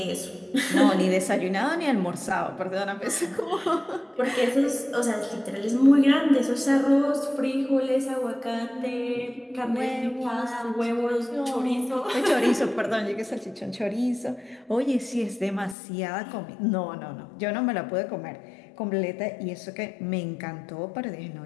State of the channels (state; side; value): drops out; right; at 15.8 s